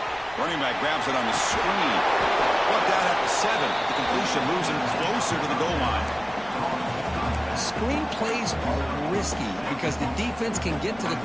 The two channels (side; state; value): left; noise; rumble, 22 dB below the sound